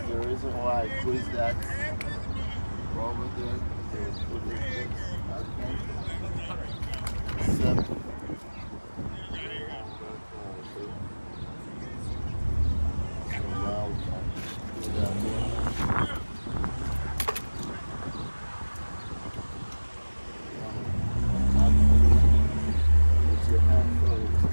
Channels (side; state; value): both; inverted; correlation -1.00